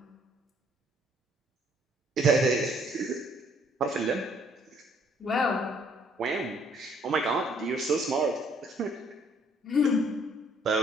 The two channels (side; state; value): both; normal; correlation 0.64